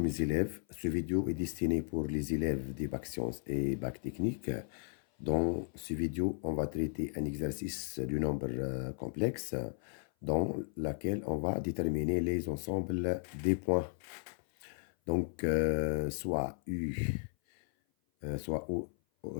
mes élèves, ce vidéo est destiné pour les élèves des bacs sciences et bac technique. Dans ce vidéo, on va traiter un exercice du nombre complexe dans lequel on va déterminer les ensembles des points. Donc, soit U, soit O,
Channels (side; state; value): right; silent; 54 dB below the other